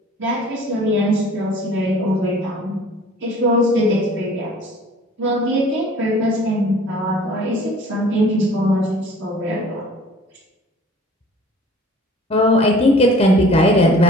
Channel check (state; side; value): normal; both; correlation 0.50